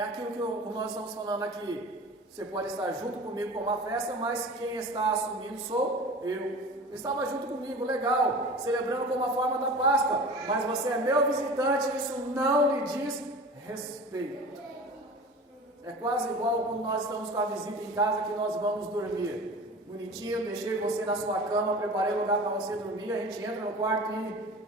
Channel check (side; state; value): both; normal; correlation 0.37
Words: aquilo que nós estamos falando aqui. Você pode estar junto comigo com uma festa, mas quem está assumindo sou eu. Estava junto comigo, legal, celebrando como a forma da Páscoa, mas você é meu visitante, isso não lhe diz respeito. É quase igual quando nós estamos com a visita em casa, que nós vamos dormir. Bonitinho, deixei você na sua cama, preparei lugar para você dormir, a gente entra no quarto e